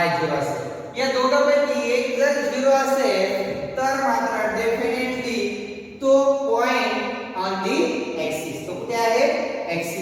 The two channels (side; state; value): both; identical; correlation 1.00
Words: 0 असेल या दोघांपैकी एक जर 0 असेल तर मात्र डेफिनेटली तो पॉइंट ऑन दी ऍक्सिस तो कुठे आहे